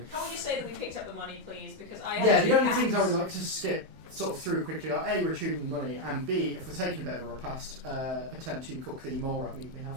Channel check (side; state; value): left; late; 31 ms